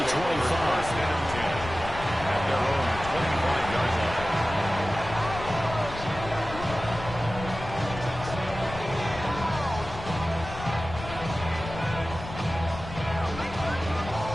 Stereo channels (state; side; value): noise; left; rumble, 10 dB below the sound